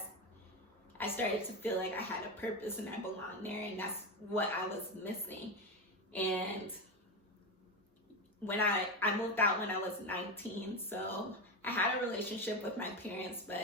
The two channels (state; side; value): normal; both; correlation 0.16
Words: I started to feel like I had a purpose and I belonged there, and that's what I was missing. And when I moved out when I was 19, so I had a relationship with my parents,